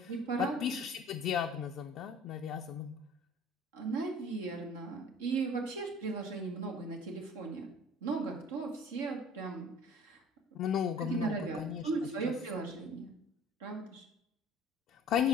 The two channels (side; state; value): both; normal; correlation 0.48